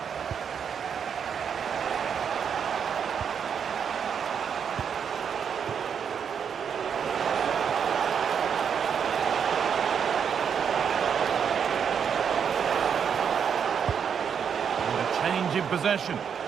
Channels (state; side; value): quieter; left; 7.3 dB